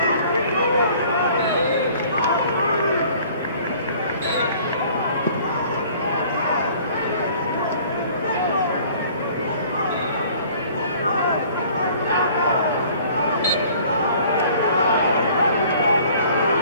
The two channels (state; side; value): inverted; both; correlation -0.53